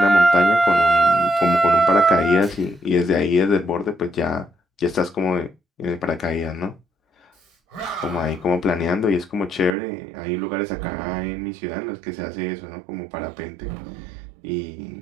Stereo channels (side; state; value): left; drops out; at 9.7 s